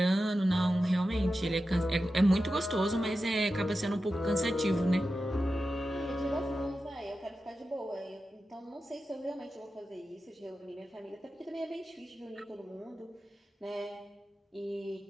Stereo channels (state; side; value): normal; both; correlation 0.92